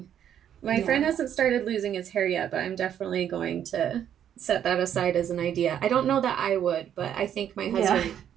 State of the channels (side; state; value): left; quieter; 9.7 dB